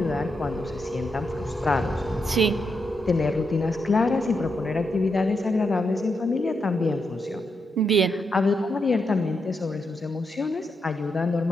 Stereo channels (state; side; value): normal; both; correlation 0.83